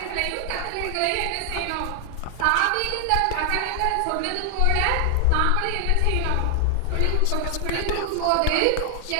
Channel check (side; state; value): both; different; correlation 0.00